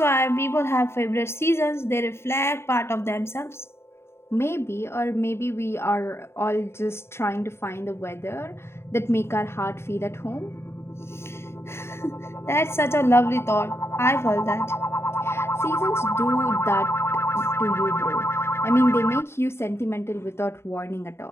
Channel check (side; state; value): right; late; 0.12 ms